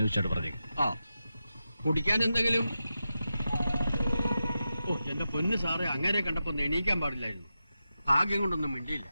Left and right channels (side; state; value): both; inverted; correlation -0.91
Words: പറഞ്ഞേക്കും. ആ കുടിക്കാൻ എന്തെങ്കിലും? ഓ എന്റെ പൊന്ന് സാറേ, അങ്ങനെ കണ്ടപ്പോ ഒന്ന് എണീക്കാൻ പാടില്ലായിരുന്നു. ഭാഗ്യം കൊണ്ടൊന്നും മിണ്ടിയില്ല.